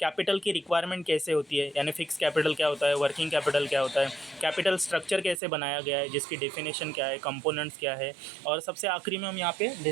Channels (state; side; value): drops out; left; at 5.4 s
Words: की रिक्वायरमेंट कैसे होती है, यानी फिक्स कैपिटल क्या होता है, वर्किंग कैपिटल क्या होता है, कैपिटल स्ट्रक्चर कैसे बनाया गया है, जिसकी डेफिनेशन क्या है, कंपोनेंट्स क्या है, और सबसे आखिरी में हम यहाँ पे